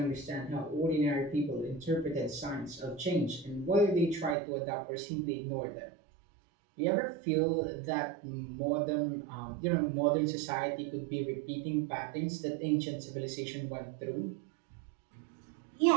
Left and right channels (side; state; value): left; drops out; at 4.4 s